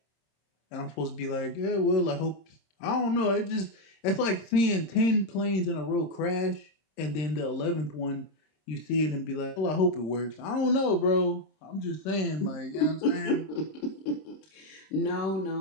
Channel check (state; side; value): late; right; 26 ms